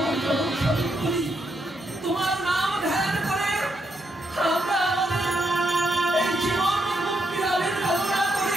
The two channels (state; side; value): normal; both; correlation 0.79